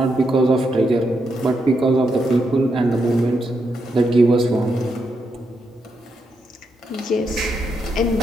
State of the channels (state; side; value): normal; both; correlation 0.81